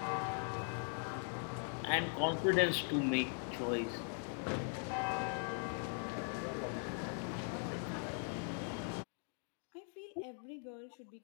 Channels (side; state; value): right; silent; 51 dB below the other